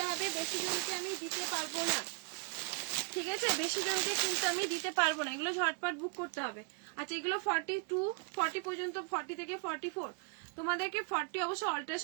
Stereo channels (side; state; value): left; quieter; 32.1 dB